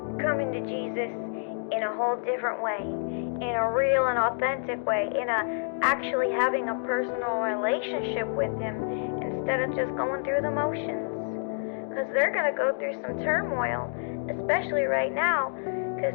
coming to Jesus in a whole different way, in a real and authentic way, in a actually having a personal relationship with Him instead of just going through the motions. Because they're going to go through some turmoil, especially right now,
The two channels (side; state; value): right; silent; digital silence